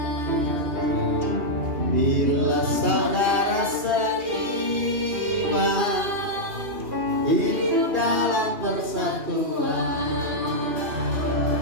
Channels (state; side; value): late; left; 2.4 ms